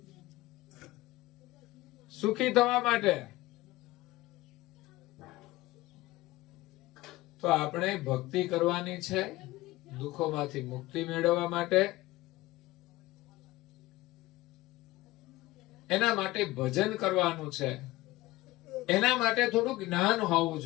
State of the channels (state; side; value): quieter; right; 18.6 dB